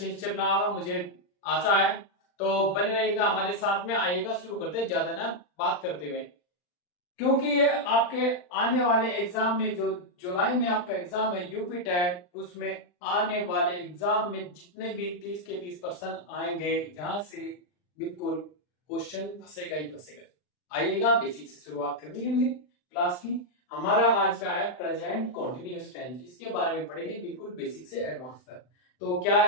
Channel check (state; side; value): late; right; 39 ms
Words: से चल रहा होगा, मुझे आशा है। तो बने रहिएगा हमारे साथ में। आइएगा, शुरू करते हैं ज्यादा ना बात करते हुए, क्योंकि ये आपके आने वाले एग्जाम में, जो जुलाई में आपका एग्जाम है यूपी टेट, उसमें आने वाले एग्जाम में जितने भी 30 के 30% आएंगे, जहां से बिल्कुल क्वेश्चन फंसेगा ही फंसेगा। आइएगा, बेसिक से शुरुआत करनी है हमने क्लास की। हमारा आज का है प्रेजेंट कॉन्टिन्यूअस टेंस, इसके बारे में पढ़ेंगे बिल्कुल बेसिक से एडवांस तक। तो क्या